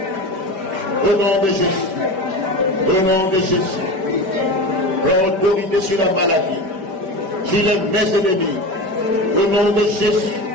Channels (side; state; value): left; late; 5.2 ms